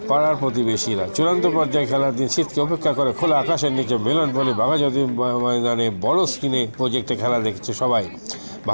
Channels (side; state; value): both; inverted; correlation -1.00